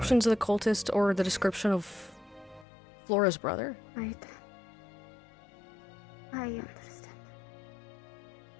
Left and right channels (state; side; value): drops out; right; at 2.7 s